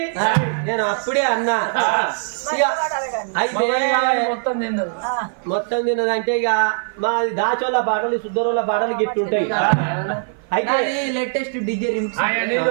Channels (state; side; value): silent; left; 56 dB below the other